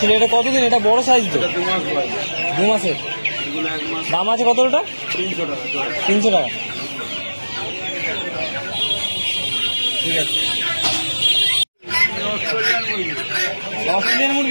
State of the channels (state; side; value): inverted; both; correlation -1.00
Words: এটা কতদিন? এটা বড় সাইজ তো। 2 মাস বয়স। 2 মাসের। এগুলো 1 মাস। দাম আছে কত ওটা? 300 টাকা জোড়া। 300 টাকা। ঠিক আছে। অস্ট্রেলিয়ান